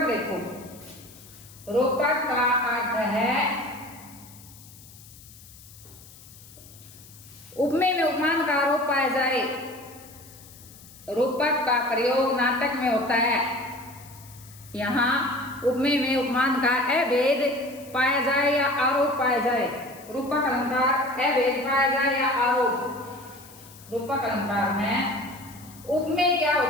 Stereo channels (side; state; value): left; noise; hiss, 21 dB below the sound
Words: देखो, रूपक का अर्थ है उपमेय में उपमान का आरोप पाया जाए। रूपक का प्रयोग नाटक में होता है। यहाँ उपमेय में उपमान का अभेद पाया जाए या आरोप पाया जाए। रूपक अलंकार अभेद पाया जाए या आरोप। रूपक अलंकार में उपमेय क्या